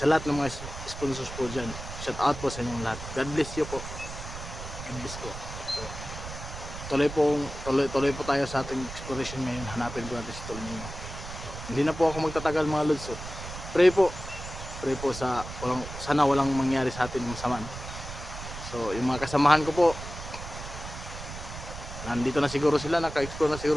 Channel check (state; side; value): noise; right; rumble, 10 dB below the sound